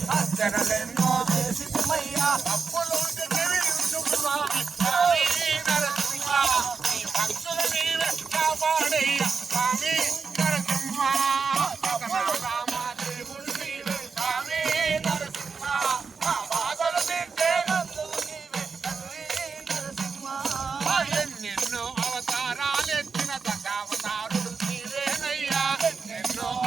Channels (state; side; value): quieter; left; 5.1 dB